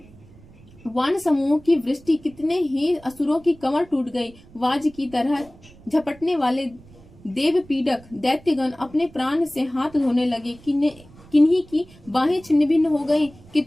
वान समूह की वृष्टि, कितने ही असुरों की कमर टूट गई। वाज की तरह झपटने वाले देव पीड़क दैत्यगण अपने प्राण से हाथ धोने लगे। किन्हीं की बाहें छिन्न भिन्न हो गई,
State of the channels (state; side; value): noise; right; rumble, 23 dB below the sound